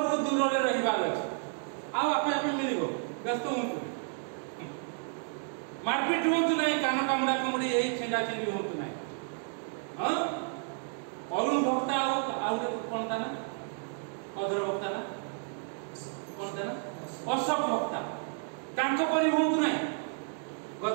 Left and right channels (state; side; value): silent; left; 57 dB below the other